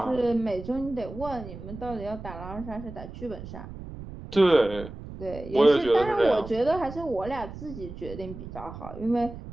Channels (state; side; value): noise; right; rumble, 12 dB below the sound